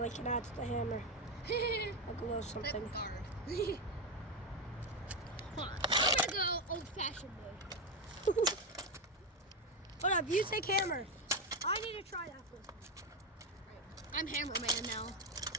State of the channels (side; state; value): both; normal; correlation 0.10